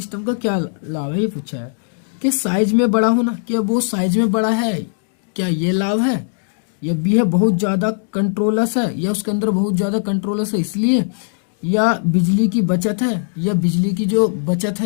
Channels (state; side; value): silent; right; digital silence